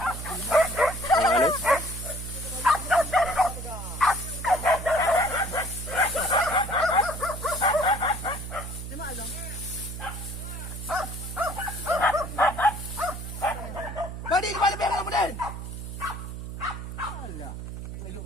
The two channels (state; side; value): noise; right; hum, 8 dB below the sound